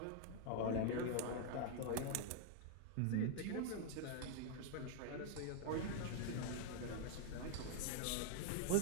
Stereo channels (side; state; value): both; different; correlation 0.00